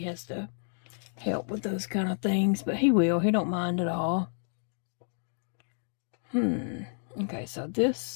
to help with those kind of things, but he will. He don't mind at all. Okay, so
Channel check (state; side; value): silent; right; digital silence